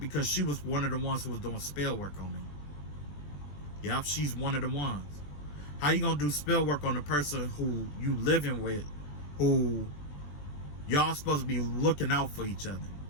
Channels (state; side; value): late; right; 20 ms